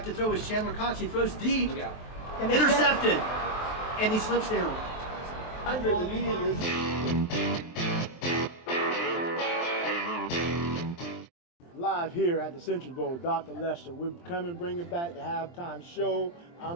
to throw is Chandler Cox. He throws deep. Intercepted. And he slips down. 100 immediately. Live here at the Century Bowl, Dr. Lester. We're coming, bringing back the halftime show.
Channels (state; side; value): late; right; 23 ms